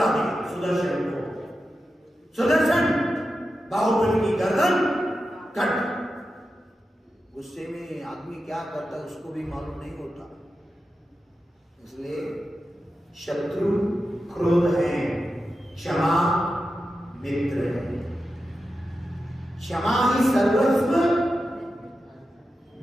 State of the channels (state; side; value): normal; both; correlation 0.91